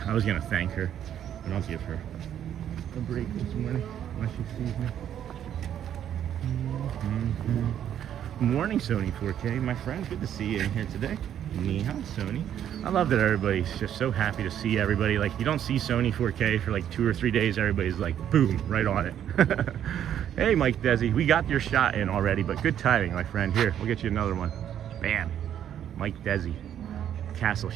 I was gonna thank her, but I'll give her a break this morning unless she sees me. Morning, Sony 4K, my friend. Good to see you in here today. Ni hao, Sony. I love that everybody's just so happy to see everybody. Like, you don't see Sony 4K for like 2 or 3 days. Everybody's like, boom, right on it. Hey, Mike Desi, we got your shot in already, but good timing, my friend. Here, we'll get you another one. Bam. Mike Desi. Castle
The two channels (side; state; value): left; quieter; 10.1 dB